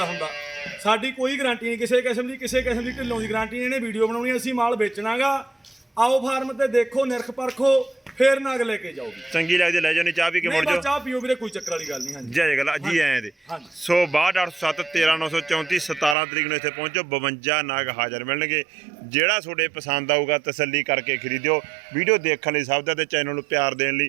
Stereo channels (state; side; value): drops out; left; at 16.2 s